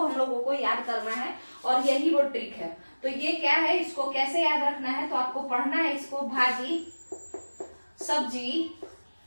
लोगों को याद करना है और यही वो ट्रिक है। तो ये क्या है, इसको कैसे याद रखना है, तो आपको पढ़ना है इसको भाजी सब्जी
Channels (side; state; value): both; inverted; correlation -1.00